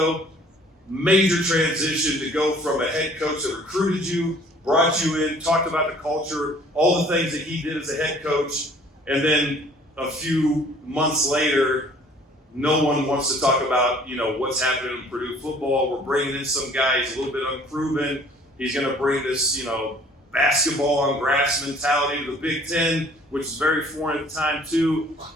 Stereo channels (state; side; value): normal; both; correlation 0.54